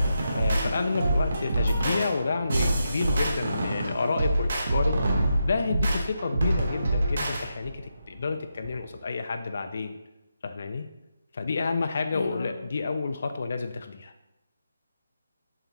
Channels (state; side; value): inverted; both; correlation -0.84